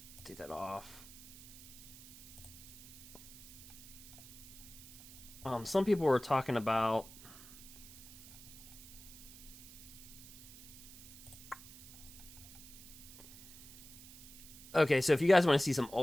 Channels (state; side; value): noise; right; hiss, 16 dB below the sound